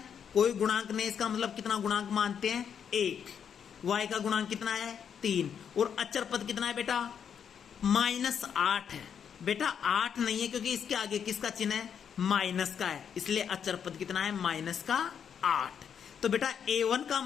कोई गुणांक नहीं, इसका मतलब कितना गुणांक मानते हैं 1, y का गुणांक कितना है 3, और अचर पद कितना है बेटा -8 है। बेटा 8 नहीं है क्योंकि इसके आगे किसका चिन्ह है माइनस का है, इसलिए अचर पद कितना है -8। तो बेटा A1 का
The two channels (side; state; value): right; quieter; 7.8 dB